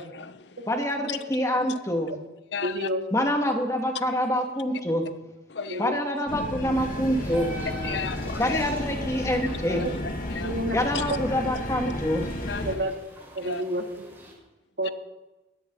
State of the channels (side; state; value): both; normal; correlation 0.51